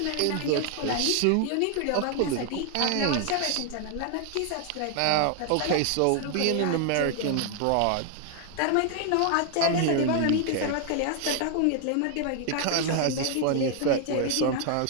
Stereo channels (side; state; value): both; different; correlation 0.00